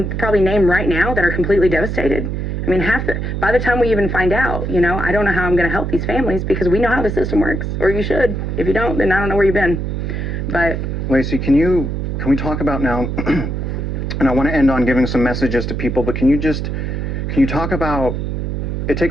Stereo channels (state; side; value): noise; right; hum, 3 dB below the sound